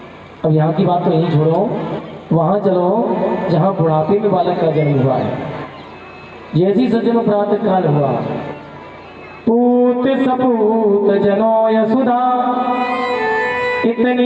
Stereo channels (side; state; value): both; identical; correlation 1.00